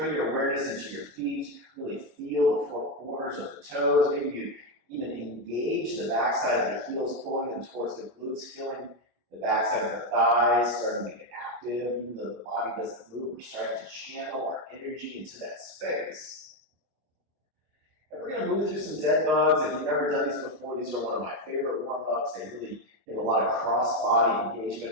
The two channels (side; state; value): left; late; 25 ms